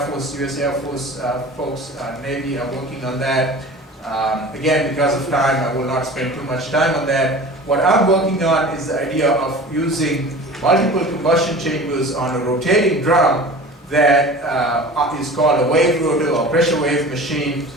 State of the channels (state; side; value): normal; both; correlation 0.39